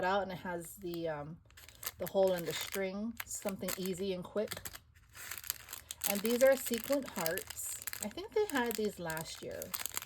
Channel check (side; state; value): both; identical; correlation 1.00